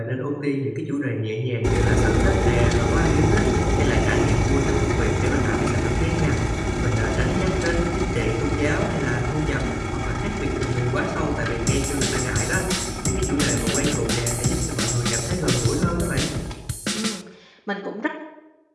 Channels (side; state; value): both; identical; correlation 1.00